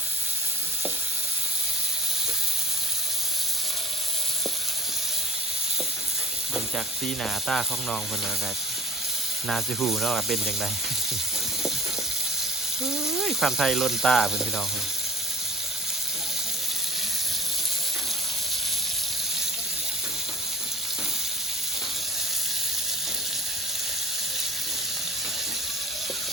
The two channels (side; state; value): both; normal; correlation 0.44